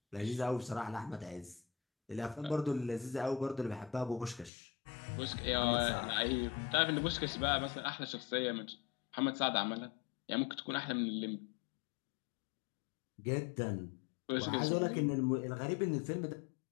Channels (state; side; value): drops out; right; at 4.5 s